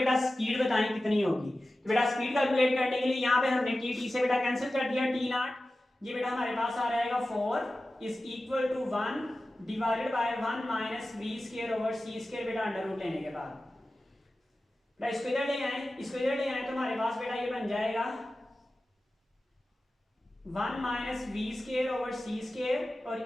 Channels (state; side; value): normal; both; correlation 0.95